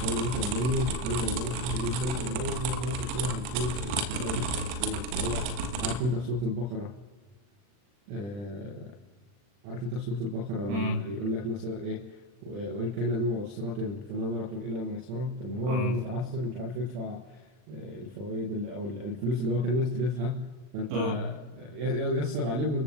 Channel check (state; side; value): late; left; 40 ms